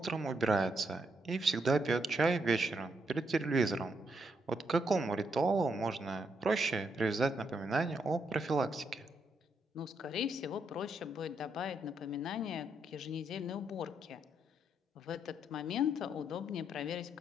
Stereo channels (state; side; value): normal; both; correlation 0.78